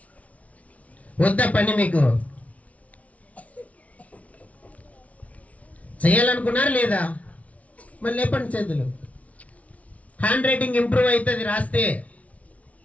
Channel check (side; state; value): right; late; 0.067 ms